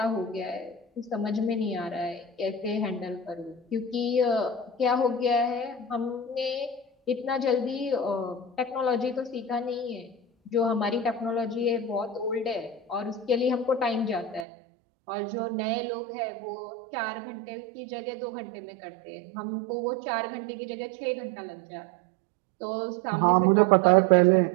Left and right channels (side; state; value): left; drops out; at 14.5 s